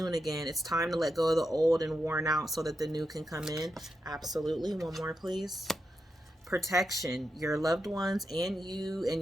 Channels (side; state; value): both; normal; correlation 0.86